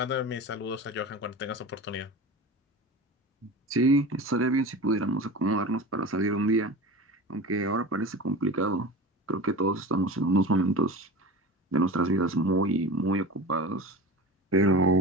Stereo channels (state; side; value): normal; both; correlation 0.32